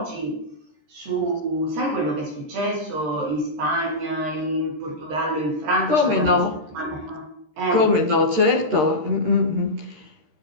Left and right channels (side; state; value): left; late; 13 ms